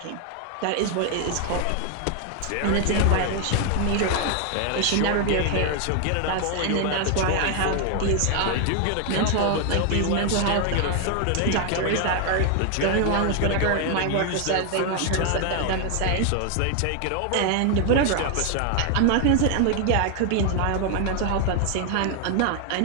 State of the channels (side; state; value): both; different; correlation 0.00